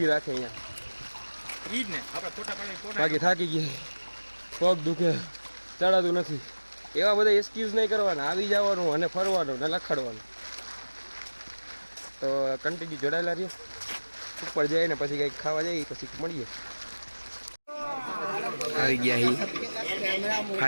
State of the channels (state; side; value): inverted; both; correlation -1.00